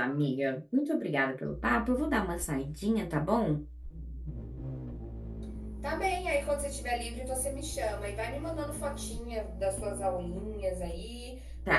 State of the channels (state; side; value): identical; both; correlation 1.00